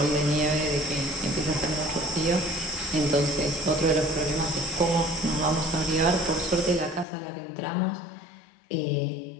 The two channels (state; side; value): drops out; right; at 7.1 s